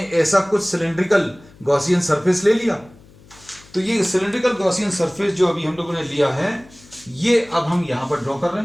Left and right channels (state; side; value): noise; left; hum, 25 dB below the sound